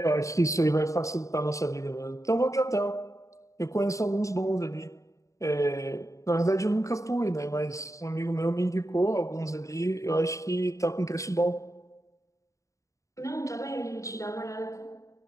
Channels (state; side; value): late; right; 0.15 ms